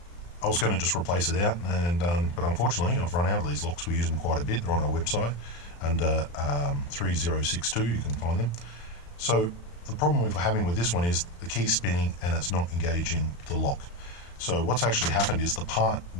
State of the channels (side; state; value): right; late; 35 ms